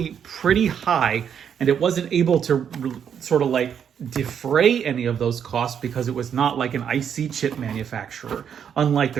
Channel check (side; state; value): left; quieter; 8.1 dB